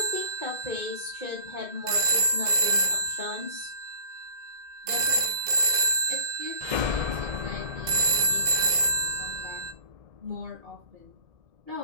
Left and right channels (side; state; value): left; late; 2.0 ms